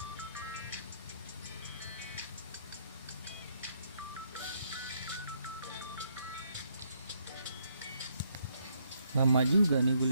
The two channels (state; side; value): inverted; both; correlation -0.72